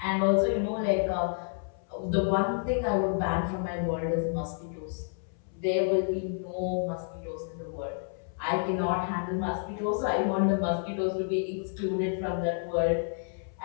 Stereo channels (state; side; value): silent; right; 58 dB below the other